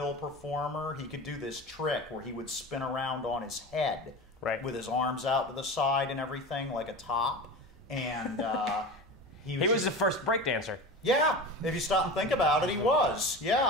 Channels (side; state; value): both; normal; correlation 0.30